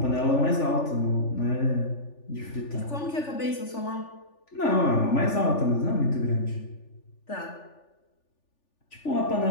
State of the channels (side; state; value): right; late; 3.4 ms